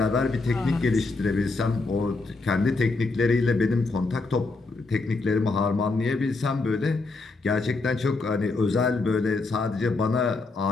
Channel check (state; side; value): quieter; right; 3.7 dB